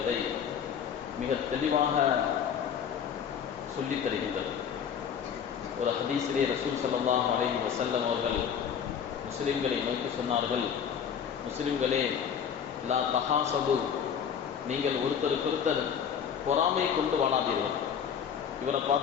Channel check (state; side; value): quieter; right; 7.9 dB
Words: மிக தெளிவாக சொல்லித் தருகின்றது. ஒரு ஹதீஸிலே ரசூல் ஸல்லல்லாஹு அலைஹி வஸல்லம் அவர்கள் முஸ்லிம்களை நோக்கி சொன்னார்கள், முஸ்லிம்களே, லா தஹாசது, நீங்கள் ஒருத்தருக்கொருத்தர் பொறாமை கொண்டு வாழாதீர்கள். இவரை